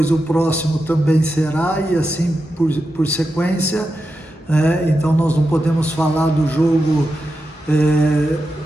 o próximo também será, e assim por sequência, então nós não podemos falar do jogo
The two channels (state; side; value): normal; both; correlation 0.89